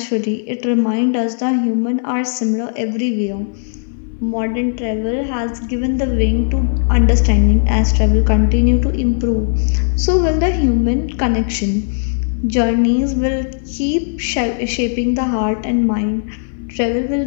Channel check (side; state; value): right; silent; digital silence